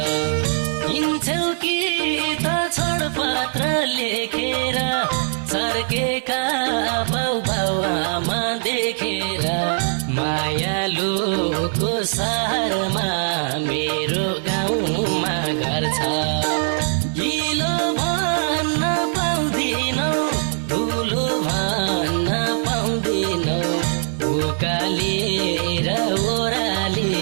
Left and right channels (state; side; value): silent; left; digital silence